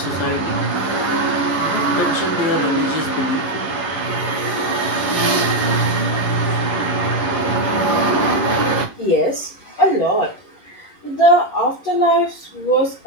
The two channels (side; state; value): right; late; 11 ms